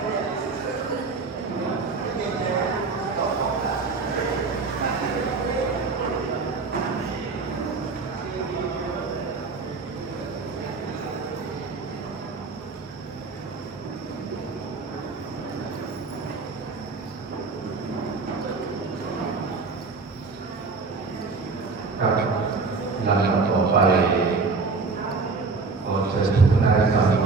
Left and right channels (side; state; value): left; quieter; 4.2 dB